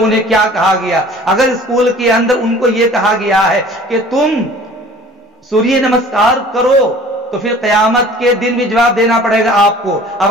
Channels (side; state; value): both; normal; correlation 0.48